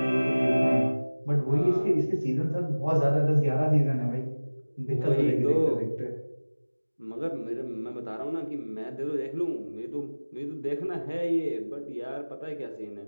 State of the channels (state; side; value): inverted; both; correlation -1.00